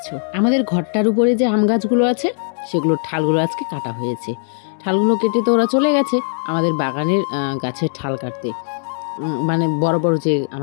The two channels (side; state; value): right; silent; digital silence